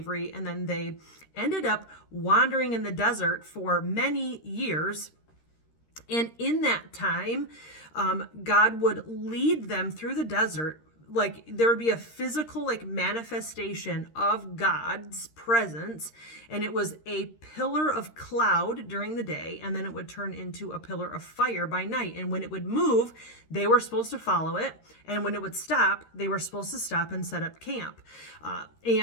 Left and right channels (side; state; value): right; late; 13 ms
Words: and then they ended up wandering in the desert for many years. And in that time, God would lead them through the desert. Like, there would be a physical manifestation of God's presence, and it was a pillar of cloud during the day, and then it would turn into a pillar of fire by night. And when it would move, they were supposed to follow it, and when it would stop, they were supposed to stop and set up camp.